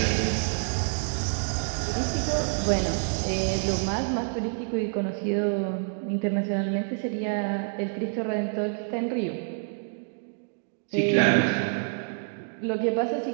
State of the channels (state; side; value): silent; left; digital silence